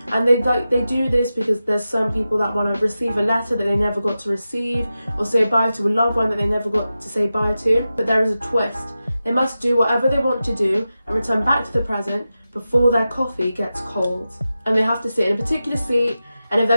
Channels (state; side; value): inverted; both; correlation -0.92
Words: And they do this because there's some people that want to receive a letter that they never got to receive, or say bye to a loved one that they never got to say bye to. But there is a twist. They must do whatever they want to do and return back to the present before their coffee gets cold. And they have to sit in a particular seat, and if